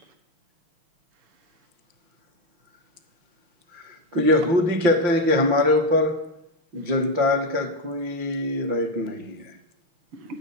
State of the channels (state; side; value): late; left; 5.8 ms